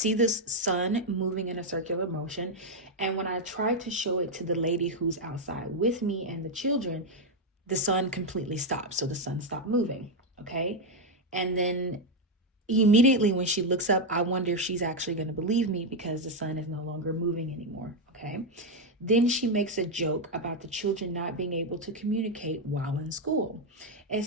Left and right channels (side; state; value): both; normal; correlation 0.03